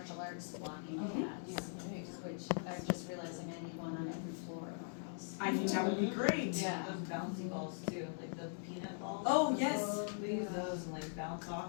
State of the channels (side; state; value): right; silent; 50 dB below the other